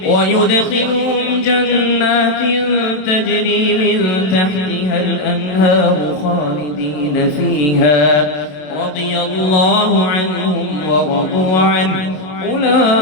ويدخلهم جنات تجري من تحتها الأنهار خالدين فيها رضي الله عنهم ورضوا عنه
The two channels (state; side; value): late; right; 27 ms